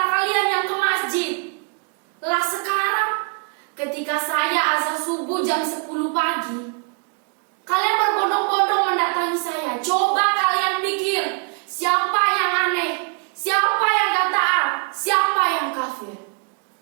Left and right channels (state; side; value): quieter; left; 39.0 dB